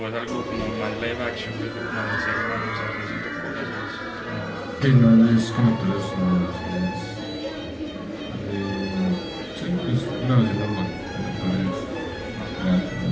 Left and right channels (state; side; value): identical; both; correlation 1.00